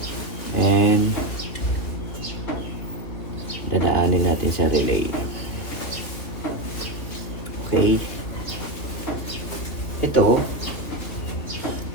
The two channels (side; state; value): right; late; 3.4 ms